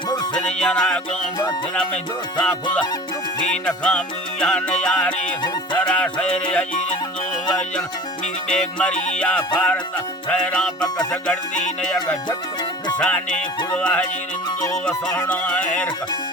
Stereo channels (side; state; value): both; normal; correlation 0.39